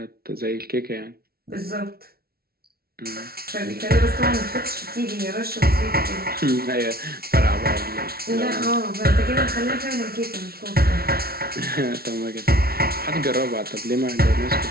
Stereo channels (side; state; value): left; late; 0.44 ms